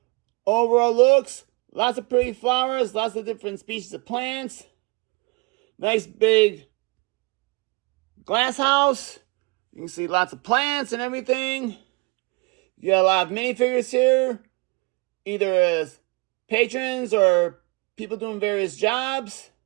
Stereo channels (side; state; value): left; quieter; 27.5 dB